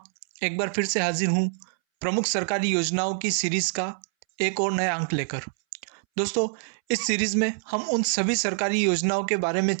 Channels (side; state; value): left; silent; 61 dB below the other